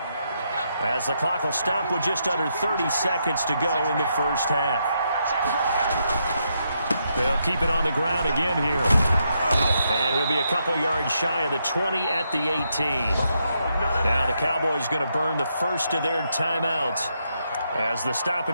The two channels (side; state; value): both; inverted; correlation -0.80